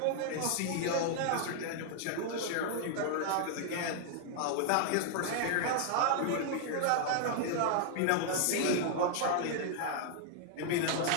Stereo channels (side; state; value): both; different; correlation 0.00